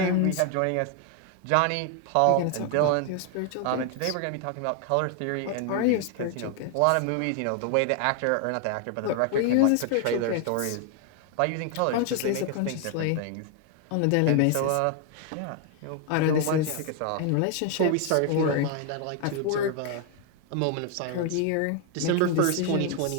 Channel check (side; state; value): both; different; correlation 0.00